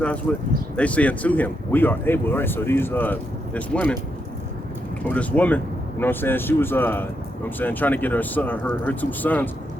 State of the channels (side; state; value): both; normal; correlation 0.81